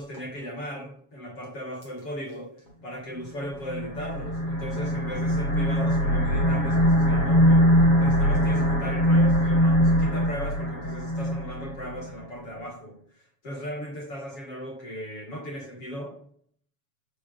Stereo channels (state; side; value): late; right; 7.2 ms